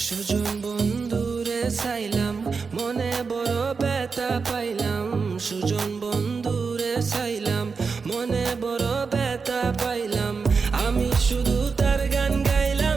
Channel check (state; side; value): quieter; left; 5.0 dB